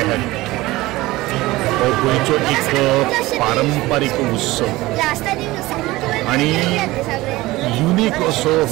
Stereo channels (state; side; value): quieter; left; 19.1 dB